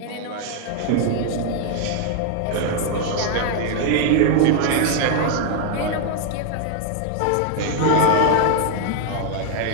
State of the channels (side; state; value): both; different; correlation 0.00